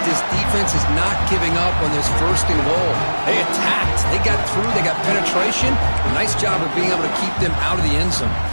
this defense is not giving up on this 1st and goal. They attacked. They got through. They got penetration. Nice job of being able to keep them out of the end zone.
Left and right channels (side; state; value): both; inverted; correlation -1.00